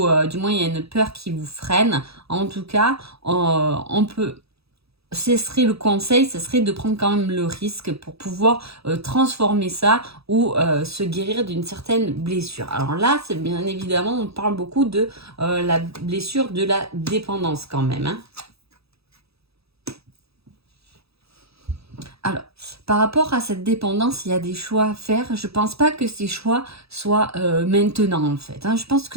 du moins il y a une peur qui vous freine. En tout cas, on peut, ce serait le conseil, ce serait de prendre quand même le risque pour pouvoir transformer ça ou se guérir d'une certaine blessure. Alors là, c'est bien évidemment, on parle beaucoup de la blessure de la dépendance quand même, hein. Alors, par rapport à cette dépendance, il y a des choix à faire. Je pense pas que ces choix soient maintenant, en fait, hein. Je pense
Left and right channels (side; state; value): left; late; 0.77 ms